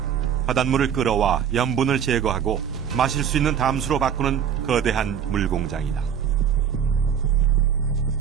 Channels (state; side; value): quieter; left; 8.4 dB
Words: 바닷물을 끌어와 염분을 제거하고 마실 수 있는 담수로 바꾸는 거대한 물공장이다.